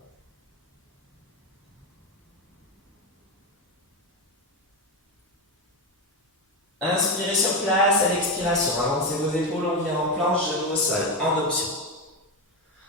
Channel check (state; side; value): normal; both; correlation 0.13